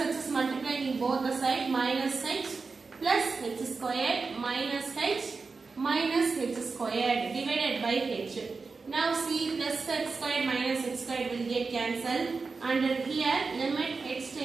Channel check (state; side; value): quieter; left; 4.4 dB